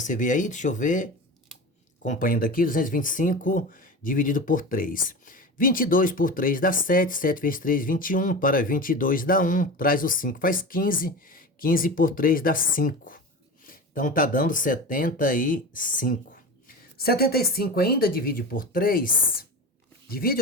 ver aí, deixa eu ver. Acompanhando aqui, 225 dividido por 3. 22 por 3 dá 7, 7 vezes 3, 21, para 22 dá 1, traz o 5, faz 15, 15 por 3 dá 5. Então tá dando 75. 75 ainda divide por 3, divide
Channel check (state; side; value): normal; both; correlation 0.29